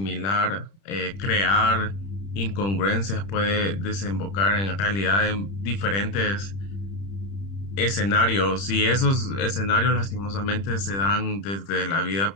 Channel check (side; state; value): right; late; 30 ms